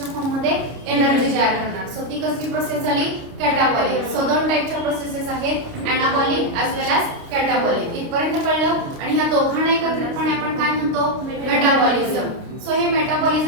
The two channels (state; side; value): late; left; 29 ms